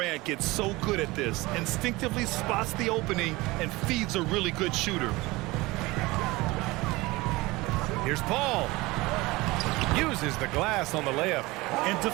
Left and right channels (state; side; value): quieter; left; 21.4 dB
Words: get so good at this, instinctively spots the opening and feeds a really good shooter. Here's Paul. Uses the glass on the layup. And